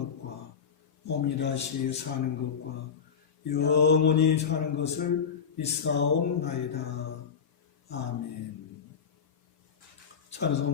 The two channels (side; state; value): right; quieter; 6.8 dB